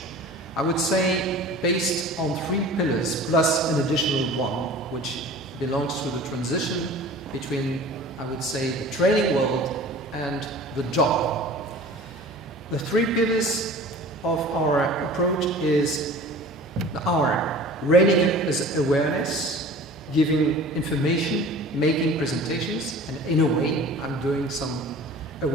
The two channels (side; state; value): both; normal; correlation 0.42